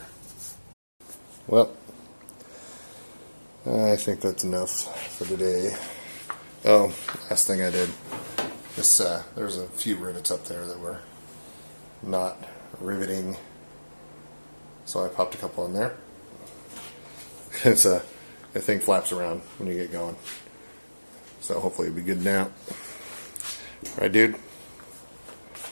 Well, I think that's enough for today. Oh, last thing I did. There's a few rivets up there that were not riveting, so I popped a couple in there. The thing flaps around when you get going, so hopefully it'll be good now. Right, dude?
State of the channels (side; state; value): both; inverted; correlation -1.00